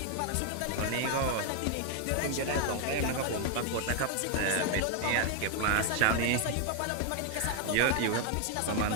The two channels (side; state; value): both; different; correlation 0.00